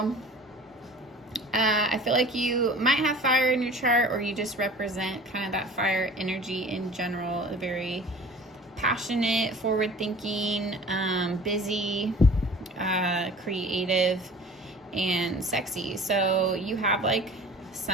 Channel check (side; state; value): both; normal; correlation 0.45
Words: I feel like you might have fire in your chart, or you just represent kind of that fire energy in general. A very passionate, forward-thinking, busy, creative, and sexy. So you have like